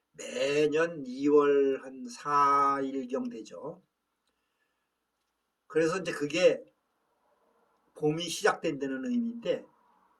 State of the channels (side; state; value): both; identical; correlation 1.00